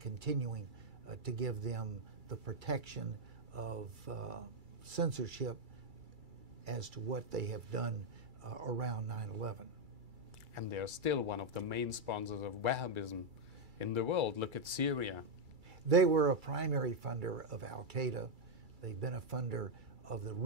to give them the protection of censorship as to what they have done around 9/11. And they're still one of the main sponsors of Wahhabism in the world. Look at Syria. They were a primary funder of Al-Qaeda. They've been a funder of the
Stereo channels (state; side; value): late; left; 2.3 ms